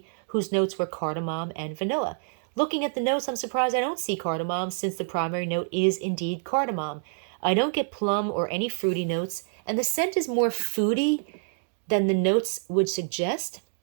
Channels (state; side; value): silent; left; digital silence